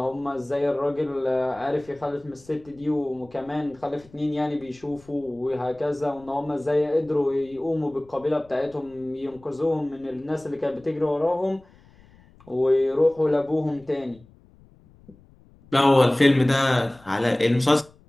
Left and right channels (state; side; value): noise; left; rumble, 27 dB below the sound